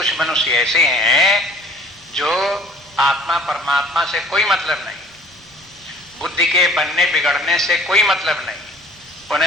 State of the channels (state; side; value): normal; both; correlation 0.51